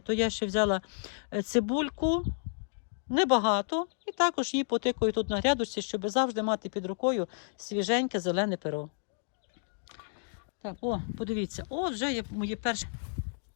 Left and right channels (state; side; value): silent; right; digital silence